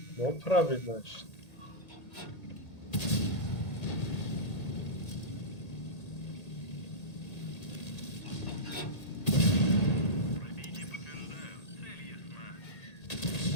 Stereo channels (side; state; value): right; late; 1.8 ms